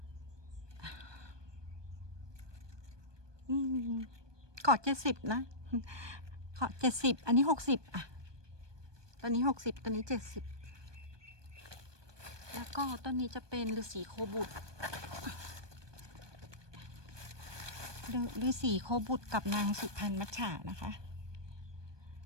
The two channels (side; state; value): left; late; 1.2 ms